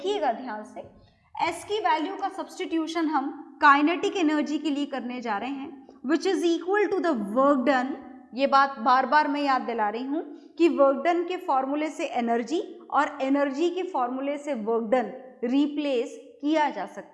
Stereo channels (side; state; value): both; identical; correlation 1.00